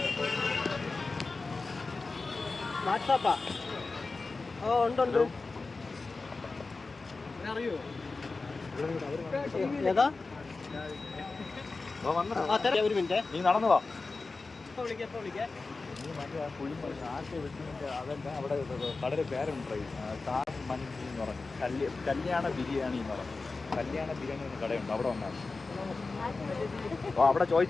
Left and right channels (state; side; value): quieter; right; 3.8 dB